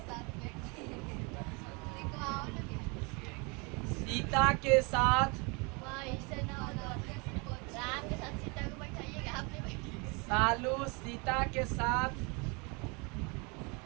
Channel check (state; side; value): quieter; left; 30.5 dB